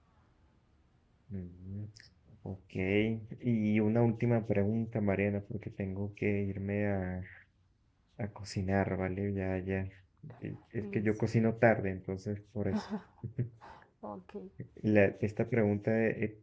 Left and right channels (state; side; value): identical; both; correlation 1.00